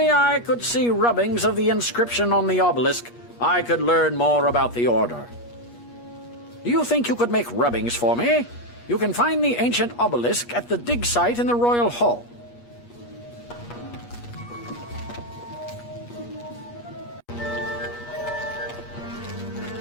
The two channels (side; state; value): right; late; 8.4 ms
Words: I could see rubbings of the inscription on the obelisk, I could learn more about the Order. Do you think you could make rubbings for me? You can find the ancient obelisk at the dig site in the Royal Hall.